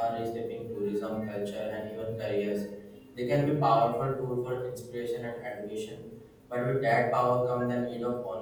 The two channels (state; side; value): identical; both; correlation 1.00